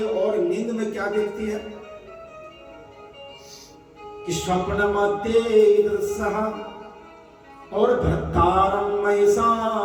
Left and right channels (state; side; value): identical; both; correlation 1.00